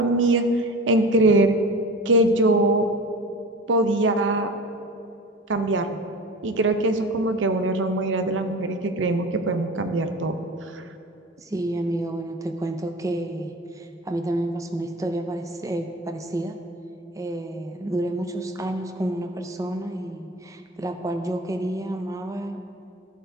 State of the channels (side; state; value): both; normal; correlation 0.35